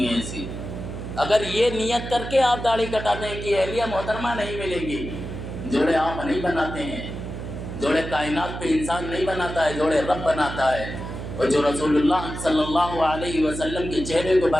ہیں ایسی۔ اگر یہ نیت کر کے آپ داڑھی کٹاتے ہیں کہ اہلیہ محترمہ نہیں ملے گی، جوڑے آپ نہیں بناتے ہیں، جوڑے کائنات پہ انسان نہیں بناتا ہے، جوڑے رب بناتا ہے، اور جو رسول اللہ صلی اللہ علیہ وسلم کے چہرے کو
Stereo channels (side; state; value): right; noise; hum, 8 dB below the sound